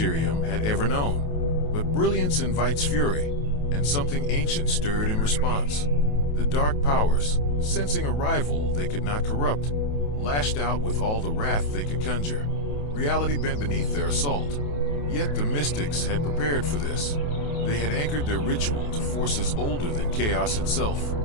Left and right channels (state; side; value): late; right; 28 ms